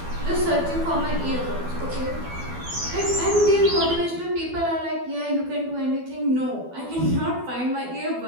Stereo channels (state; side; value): late; left; 12 ms